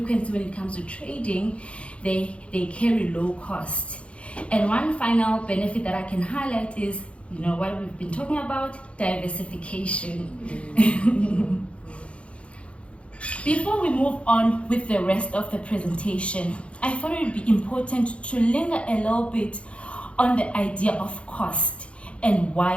when it comes to trading, they carry low cost. And one final benefit that I can highlight is, what we've been talking about, diversification. Before we move on with the rest of the presentation, I thought it would be important to linger a little bit on the idea of cost and why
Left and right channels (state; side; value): late; right; 0.061 ms